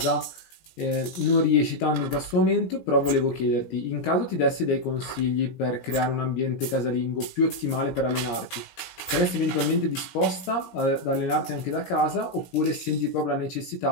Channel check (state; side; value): late; right; 17 ms